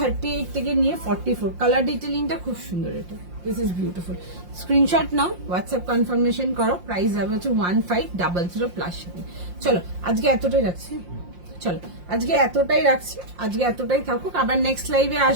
থেকে নিয়ে 44। কালার ডিটেলিংটা খুব সুন্দর, এটা দিস ইজ বিউটিফুল। স্ক্রিনশট নাও, হোয়াটসঅ্যাপ কনফার্মেশন করো। প্রাইস যাবে হচ্ছে 1500 প্লাস শিপিং। চলো আজকে এতটাই রাখছি। চলো আজকে এতটাই রাখছি, আজকে এতটাই থাকুক। আবার নেক্সট লাইভে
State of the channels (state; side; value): late; left; 5.7 ms